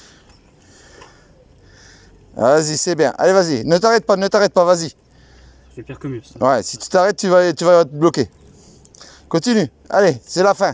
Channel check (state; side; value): identical; both; correlation 1.00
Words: Vas-y, c'est bien. Allez, vas-y. Ne t'arrête pas, vas-y. C'est pire que mieux, ça. Ouais, si tu t'arrêtes, tu vas te bloquer. Continue. Allez, c'est la fin.